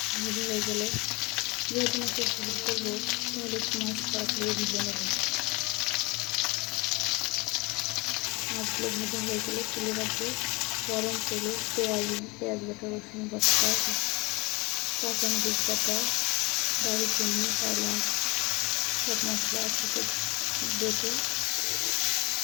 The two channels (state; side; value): quieter; right; 25.6 dB